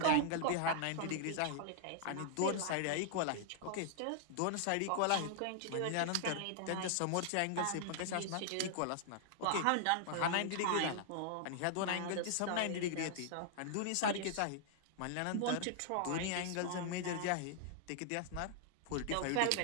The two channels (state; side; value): different; both; correlation -0.01